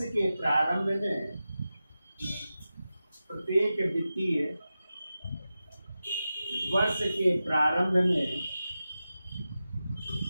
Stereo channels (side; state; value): both; inverted; correlation -0.93